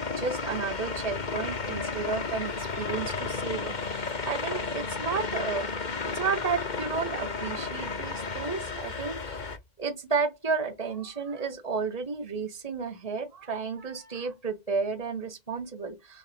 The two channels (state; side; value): late; right; 1.8 ms